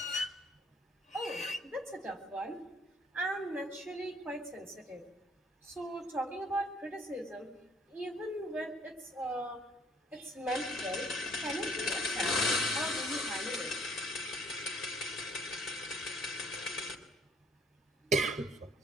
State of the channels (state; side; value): normal; both; correlation 0.60